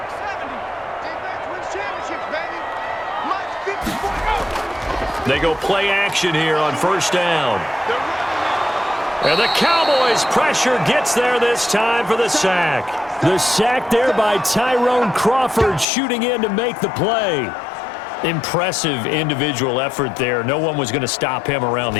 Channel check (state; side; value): drops out; right; at 15.9 s